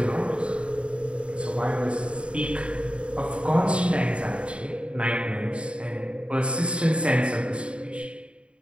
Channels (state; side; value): late; left; 0.058 ms